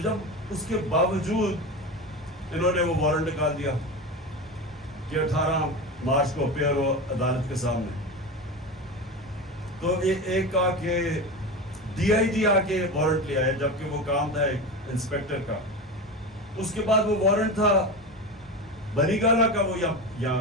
جب اس کے باوجود انہوں نے وہ وارنٹ نکال دیا کہ 18 مارچ کو اپیئر ہو عدالت کے سامنے، تو ایک آ کے DIG آ کے وارنٹ لیا ہے، جبکہ وہ کام تھا ایک انسپیکٹر کا۔ اس کے بعد وہ وارنٹ تھا بنی گالا کا، وہ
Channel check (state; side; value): normal; both; correlation 0.24